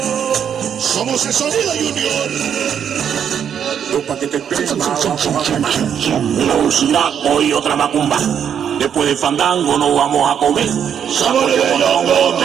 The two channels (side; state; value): left; quieter; 8.4 dB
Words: Somos el Sonido Junior. Pa' que te pegues, Velocidad, hoy otra macumba. Después del fandango nos vamos a comer sabores de hongo